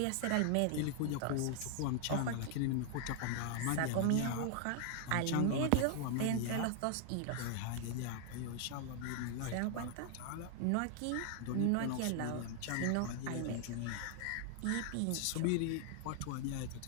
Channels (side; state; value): both; different; correlation 0.00